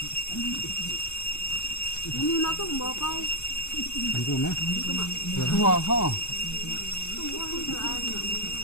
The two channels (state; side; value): late; right; 0.80 ms